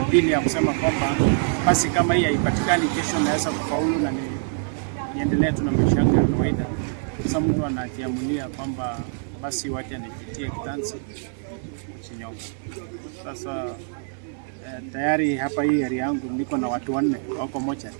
dini ya kusema kwamba basi kama hii haipatikani kesho naweza kufaulu na niendelee tu na maisha yangu ya kawaida. Sasa mtu anajiamulia kwamba basi wacha nipitie kitanzi kujinyonga. Sasa tayari hapa hii area yangu niko na watu 4 wako moja.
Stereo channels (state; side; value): silent; left; digital silence